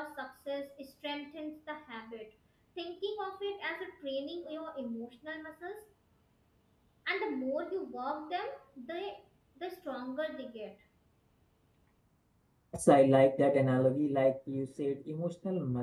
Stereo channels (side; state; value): both; identical; correlation 1.00